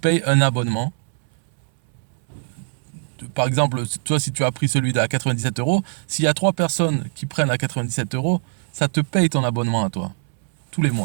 un abonnement. Par exemple, toi, si tu as pris celui à 97 euros, s'il y a 3 personnes qui prennent à 97 euros, ça te paye ton abonnement à toi, tous les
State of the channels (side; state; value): left; silent; 62 dB below the other